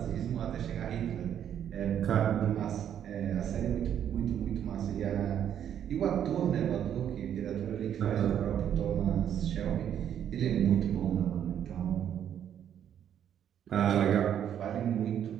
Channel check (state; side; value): quieter; left; 9.6 dB